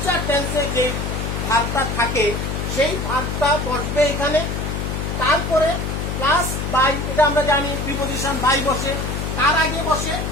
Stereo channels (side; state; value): left; noise; hum, 3 dB below the sound